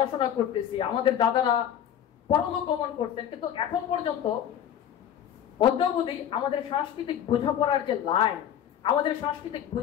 করতেছি, আমাদের দাদারা পরলোক গমন করতেন, কিন্তু এখন পর্যন্ত অদ্যাবধি আমাদের সাংস্কৃতিক বোঝাপড়ার যে লাইন, আমাদের সাংস্কৃতিক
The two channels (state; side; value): quieter; right; 9.8 dB